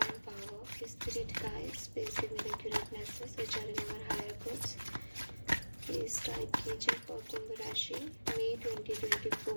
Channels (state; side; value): inverted; both; correlation -1.00